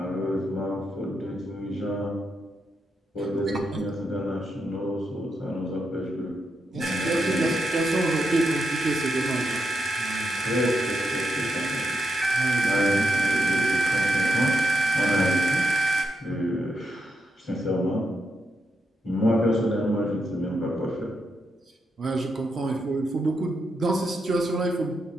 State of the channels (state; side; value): normal; both; correlation 0.83